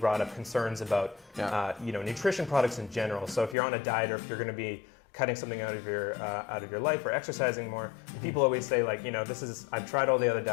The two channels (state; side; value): drops out; right; at 3.6 s